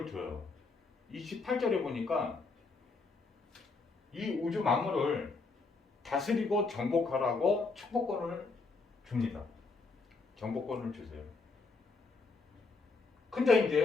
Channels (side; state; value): right; quieter; 4.1 dB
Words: 줘요. 28절에 보니까 이 우주 만물을 다스리고 정복하라고 축복권을 줍니다. 정복권을 주세요. 근데